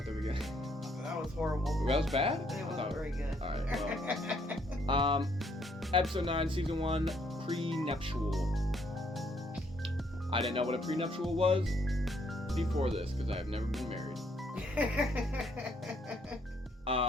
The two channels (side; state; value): both; normal; correlation 0.69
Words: the beginning. That was horrible. That was bad? It wasn't very good. Alright, well. Episode 9, Season 1, Pre-Nuptial. I didn't know what a prenuptial was before this, because I have never been married.